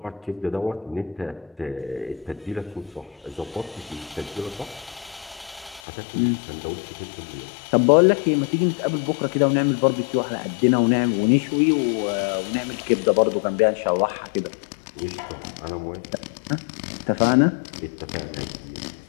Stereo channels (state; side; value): drops out; right; at 5.8 s